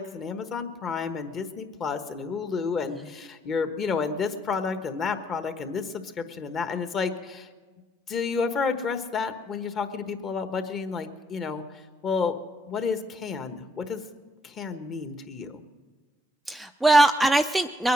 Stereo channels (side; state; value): both; normal; correlation 0.71